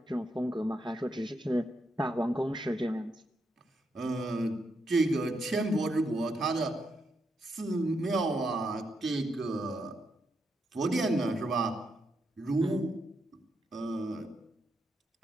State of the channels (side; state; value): both; normal; correlation 0.81